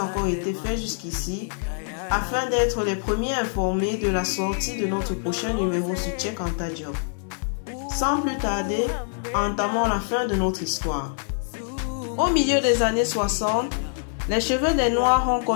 été fait jusqu'ici, afin d'être les premiers informés de la sortie de notre prochain numéro sur Cheikh Anta Diop. Sans plus tarder, entamons la fin de notre histoire. Au milieu des années 60, les cheveux des Noirs ont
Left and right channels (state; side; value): silent; right; 62 dB below the other